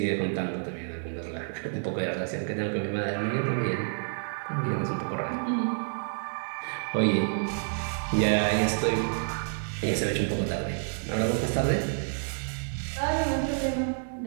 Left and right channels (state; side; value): silent; left; 59 dB below the other